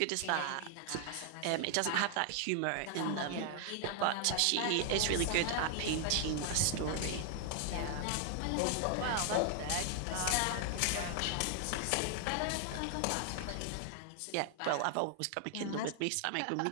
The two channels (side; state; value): both; different; correlation 0.00